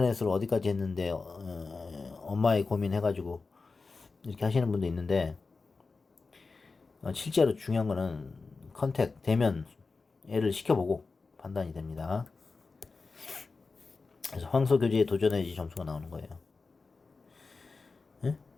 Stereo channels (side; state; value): right; quieter; 4.1 dB